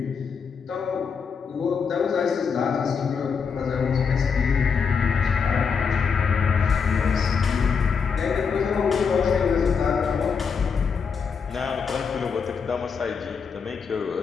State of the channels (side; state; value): right; quieter; 6.0 dB